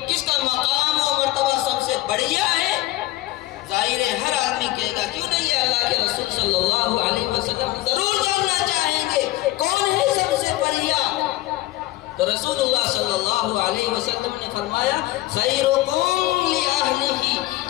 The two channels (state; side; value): quieter; right; 17.3 dB